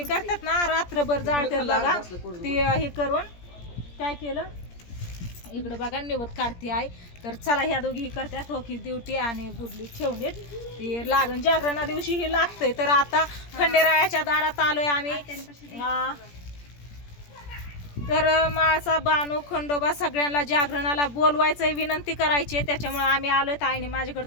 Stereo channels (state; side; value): late; right; 17 ms